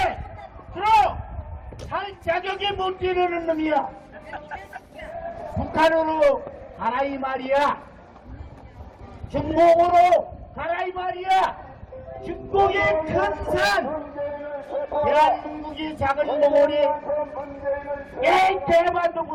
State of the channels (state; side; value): identical; both; correlation 1.00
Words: 살 자격이 못 이르는 놈이야. 북한으로 가라 이 말이야. 중국으로 가라 이 말이야. 중국이 큰 산, 대한민국이 작은 덩어리. 에이 대만도